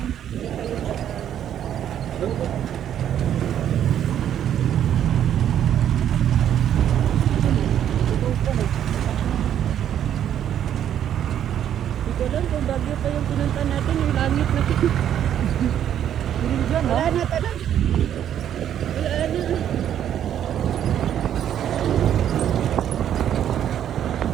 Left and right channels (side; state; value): left; quieter; 10.1 dB